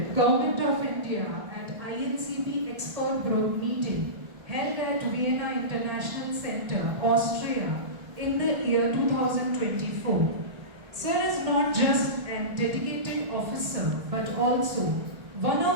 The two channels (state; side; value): late; left; 1.4 ms